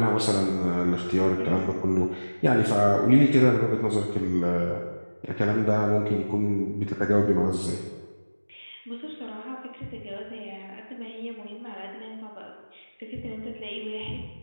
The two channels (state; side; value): inverted; both; correlation -1.00